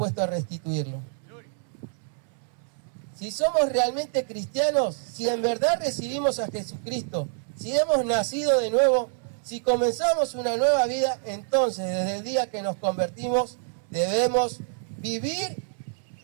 a restituirlo. Si somos realmente cristianos, si en verdad recibimos a Jesucristo, si hemos nacido de nuevo, si comenzamos una nueva vida, entonces desde el día que nos convertimos debemos vivir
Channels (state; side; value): silent; left; 60 dB below the other